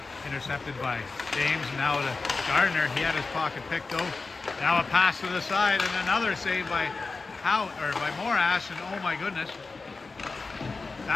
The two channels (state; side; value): quieter; right; 4.0 dB